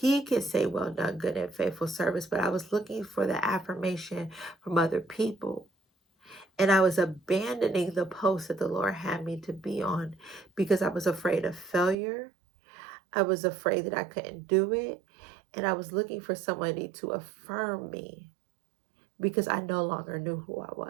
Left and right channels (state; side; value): drops out; left; at 12.0 s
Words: can say, well done, good and faithful service. But I was looking for the affirmation from other people. And I was abandoning the post that the Lord had me to be on because I was afraid of failure. I was afraid that I couldn't do it. And I was looking for somebody to affirm me because I no longer knew who I was.